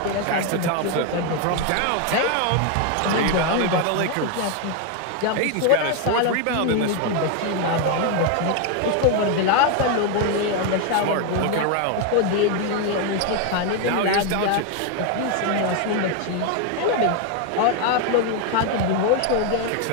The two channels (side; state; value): both; different; correlation 0.01